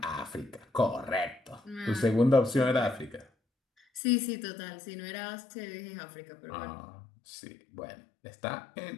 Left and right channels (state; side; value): drops out; right; at 4.0 s